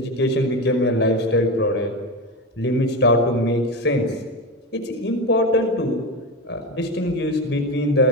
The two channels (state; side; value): normal; both; correlation 0.20